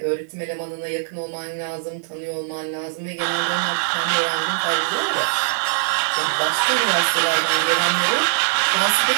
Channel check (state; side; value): silent; left; 64 dB below the other